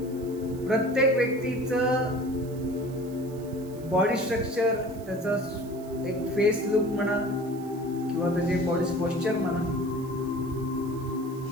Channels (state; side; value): noise; right; hiss, 23 dB below the sound